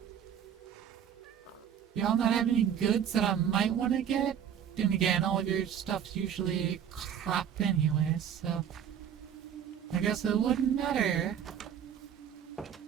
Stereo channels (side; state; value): left; quieter; 8.9 dB